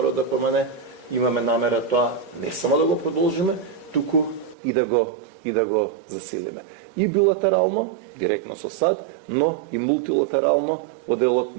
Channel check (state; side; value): drops out; left; at 4.5 s